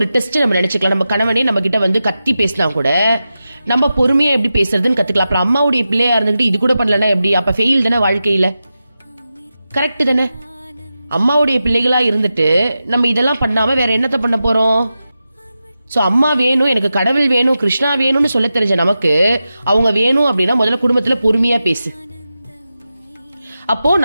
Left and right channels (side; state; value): both; inverted; correlation -0.92